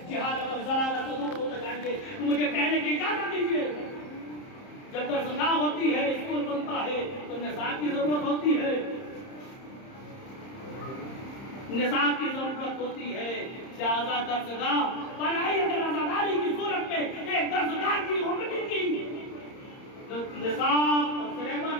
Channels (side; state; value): right; late; 30 ms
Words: جہالت اور ضلالت سے دور ہوتے جائیں گے. تو مجھے کہنے کی اجازت دیجیے، جب درسگاہ ہوتی ہے، اسکول بنتا ہے تو نصاب کی ضرورت ہوتی ہے، نصاب کی ضرورت ہوتی ہے. لہذا درسگاہ بنائی اگر عزاداری کی صورت میں ایک درسگاہ کی ہوگی کی نصاب اور سلیبس